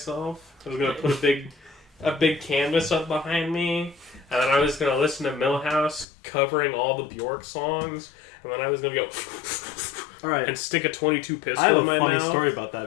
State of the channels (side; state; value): right; drops out; at 6.1 s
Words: I was gonna put a big canvas up behind me, and then I was gonna listen to Millhouse covering all the Bjork songs, and then I was gonna go Alright. and stick a 22 pistol I have in a my funny mouth. story about